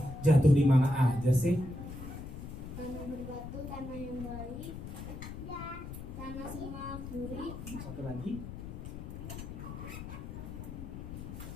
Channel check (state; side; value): noise; left; rumble, 9 dB below the sound